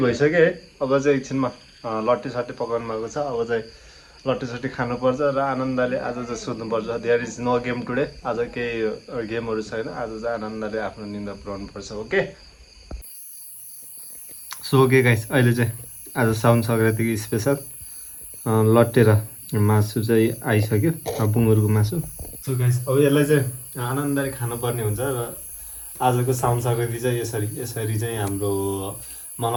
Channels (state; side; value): identical; both; correlation 1.00